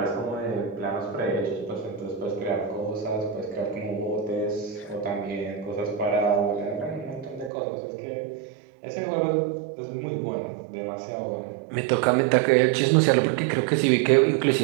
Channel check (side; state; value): left; drops out; at 7.5 s